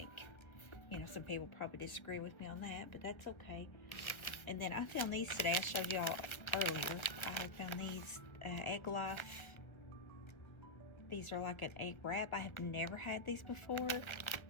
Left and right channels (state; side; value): late; right; 1.0 ms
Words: You know, some people probably disagree with me on that, but that's okay. And then I found these today. I showed y'all earlier. I found these Egg Life. These are like an egg wrap. I have never had these before,